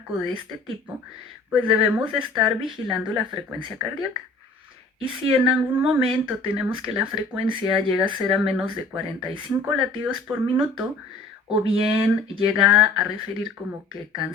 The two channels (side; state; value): right; quieter; 3.4 dB